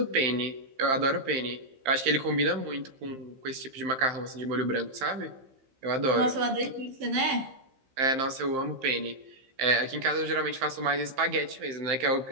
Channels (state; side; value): late; left; 15 ms